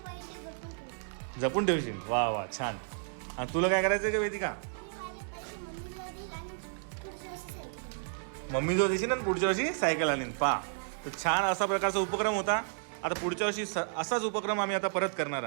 पैसे जपून ठेवशील. वा वा छान. आणि तुला काय करायचं आहे का वेदिका? मम्मी जो देशील ना पुढच्या वर्षी सायकल आणीन. पहा तर छान असा प्रकारचा उपक्रम होता. आता पुढच्या वर्षी असाच उपक्रम आम्ही आता परत करणार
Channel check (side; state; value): left; silent; digital silence